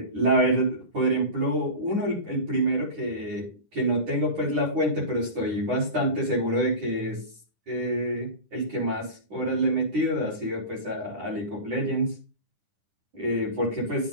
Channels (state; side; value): late; left; 10 ms